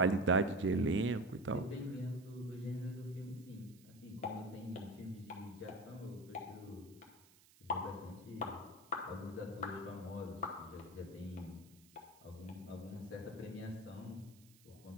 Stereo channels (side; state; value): right; noise; hiss, 25 dB below the sound